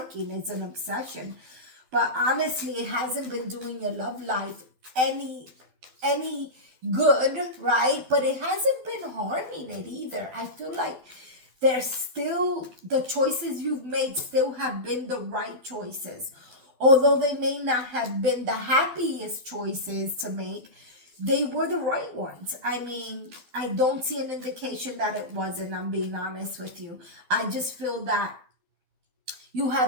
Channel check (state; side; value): late; left; 12 ms